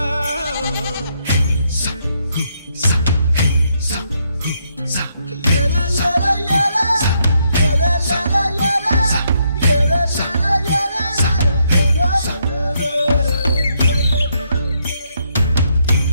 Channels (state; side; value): inverted; both; correlation -0.75